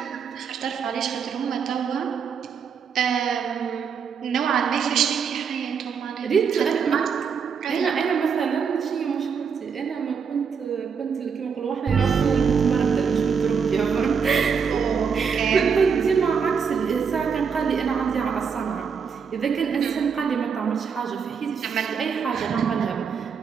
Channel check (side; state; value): left; quieter; 6.4 dB